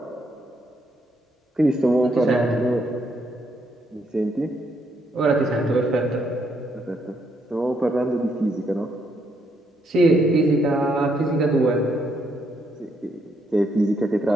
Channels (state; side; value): normal; both; correlation 0.75